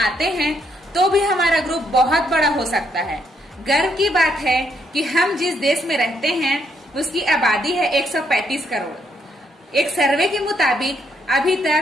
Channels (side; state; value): both; normal; correlation 0.74